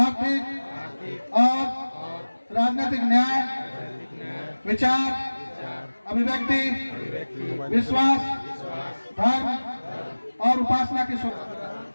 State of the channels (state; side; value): inverted; both; correlation -1.00